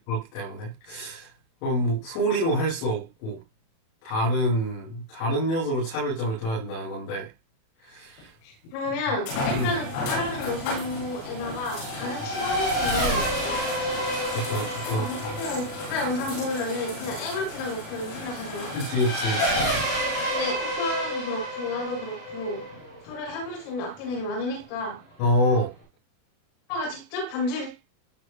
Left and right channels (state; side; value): late; right; 36 ms